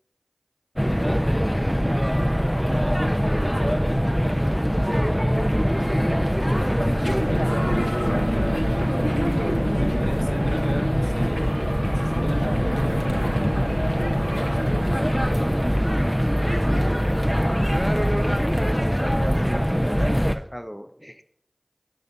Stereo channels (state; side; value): identical; both; correlation 1.00